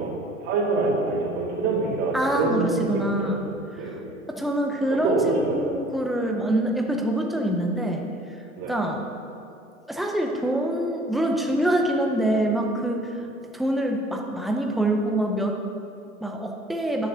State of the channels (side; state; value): both; normal; correlation 0.54